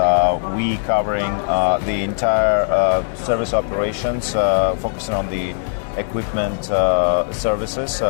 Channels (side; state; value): right; silent; digital silence